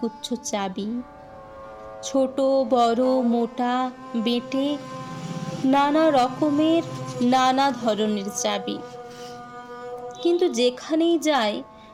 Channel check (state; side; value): identical; both; correlation 1.00